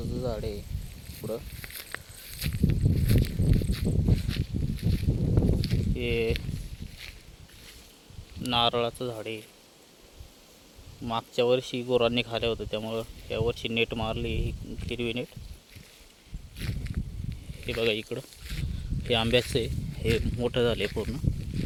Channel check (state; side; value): identical; both; correlation 1.00